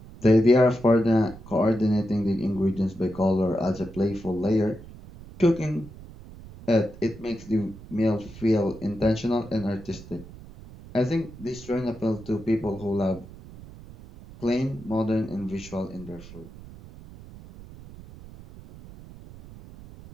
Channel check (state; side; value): noise; right; rumble, 17 dB below the sound